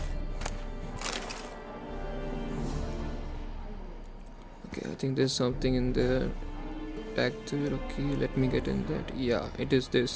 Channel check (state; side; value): identical; both; correlation 1.00